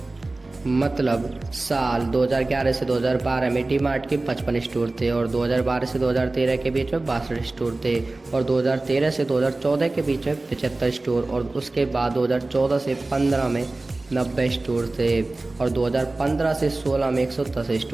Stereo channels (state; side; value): quieter; left; 3.1 dB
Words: मतलब साल 2011 से 2012 में डी मार्ट के 55 स्टोर थे और 2012 से 2013 के बीच में 62 स्टोर थे और 2013 से 2014 के बीच में 75 स्टोर और उसके बाद 2014 से 15 में 90 स्टोर थे और 2015 से 16 में 110